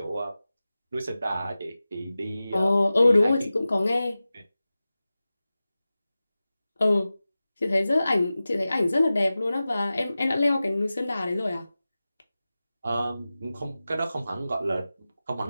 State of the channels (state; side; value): inverted; both; correlation -0.95